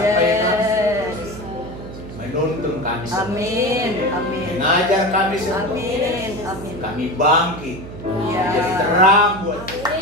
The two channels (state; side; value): noise; right; hum, 12 dB below the sound